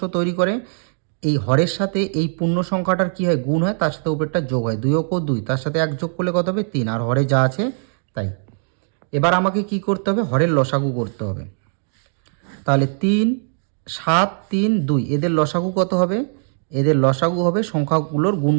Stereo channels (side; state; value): left; silent; 59 dB below the other